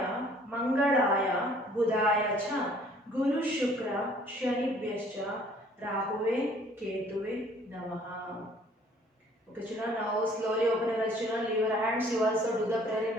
Mangalaya Budaya cha Guru Shukra Shanibhyascha Rahuve Ketuve Namaha. Okay children, now slowly open your eyes children. Leave your hands. You also do the prayer in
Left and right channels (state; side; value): normal; both; correlation 0.57